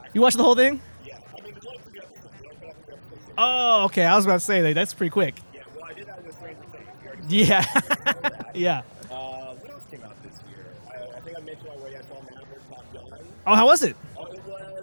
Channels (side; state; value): both; inverted; correlation -1.00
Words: You watched the whole thing? Yeah. I mean, there's only 3 episodes. Oh, okay. I was about to say, that's pretty quick. Yeah, well, I did that with Stranger Things. We already Yeah. saw that. Yeah. What else came out this year? I think I mentioned already I saw Maverick Top Gun. Oh, how was it? Oh, it